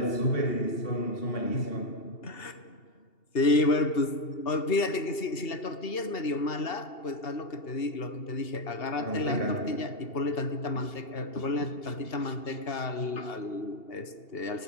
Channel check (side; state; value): right; late; 2.8 ms